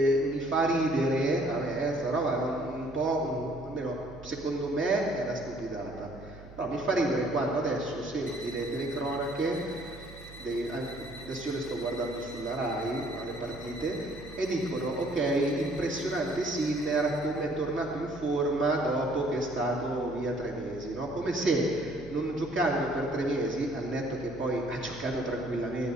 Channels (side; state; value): right; noise; hum, 17 dB below the sound